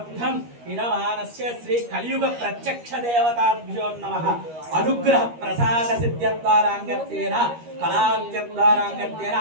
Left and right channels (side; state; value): left; late; 13 ms